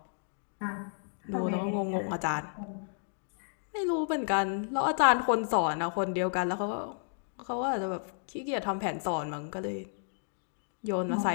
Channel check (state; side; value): silent; right; digital silence